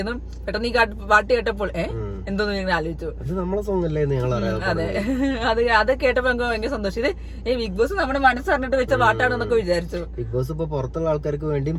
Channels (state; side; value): identical; both; correlation 1.00